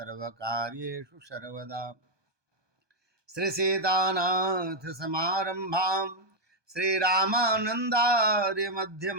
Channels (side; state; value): left; late; 1.2 ms